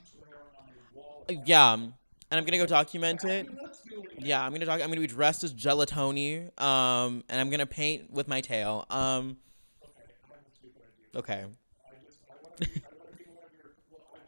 Yeah, and I'm gonna go document it. Yeah, I'm gonna be dressed as Gelatoni. And I'm gonna paint with my tail. Okay.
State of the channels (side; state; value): both; inverted; correlation -1.00